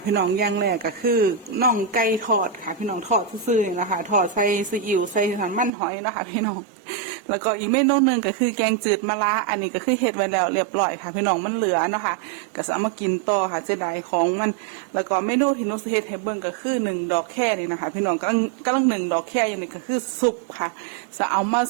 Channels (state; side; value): drops out; left; at 5.7 s